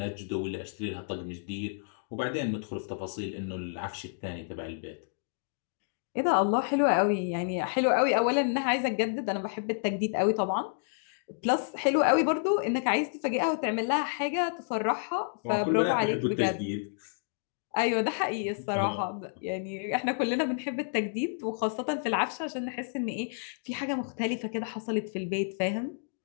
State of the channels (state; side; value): silent; right; digital silence